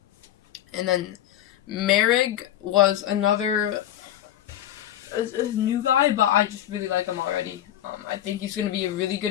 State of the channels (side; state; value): right; quieter; 12.0 dB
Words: And then Merrick was another a new guy, but I just really like him already. I think he's going to be a really